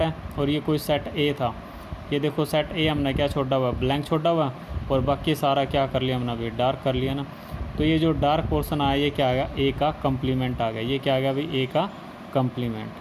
है और ये कोई सेट ए था, ये देखो सेट ए हमने क्या छोड़ा हुआ, ब्लैंक छोड़ा हुआ, और बाकी सारा क्या कर लिया हमने अभी, डार्क कर लिया ना। तो ये जो डार्क पोर्शन आया ये क्या आ गया, ए का कम्प्लीमेंट आ गया, ये क्या आ गया भाई, ए का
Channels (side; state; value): both; identical; correlation 1.00